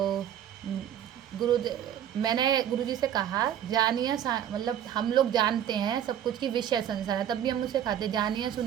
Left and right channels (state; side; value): quieter; left; 10.2 dB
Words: मैंने गुरुजी से कहा जानिए, मतलब हम लोग जानते हैं सब कुछ की विष है संसार है, तब भी हम उसे खाते, जानिए